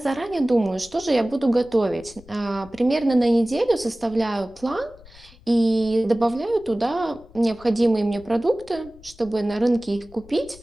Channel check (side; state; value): left; noise; rumble, 23 dB below the sound